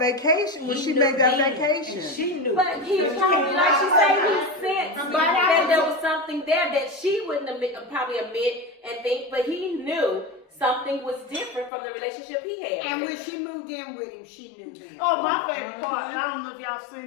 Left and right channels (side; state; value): right; drops out; at 11.7 s